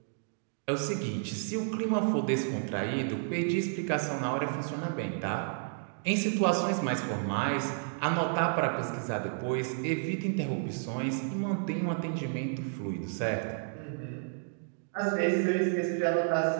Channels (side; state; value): left; silent; digital silence